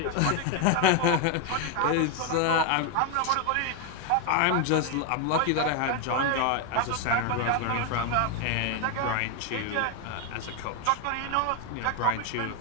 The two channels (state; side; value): different; both; correlation 0.01